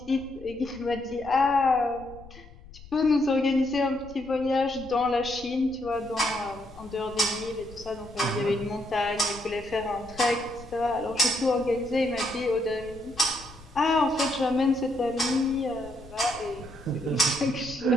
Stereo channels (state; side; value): noise; left; rumble, 19 dB below the sound